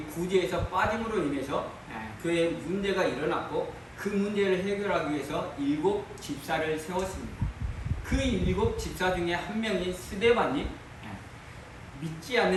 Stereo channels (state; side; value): identical; both; correlation 1.00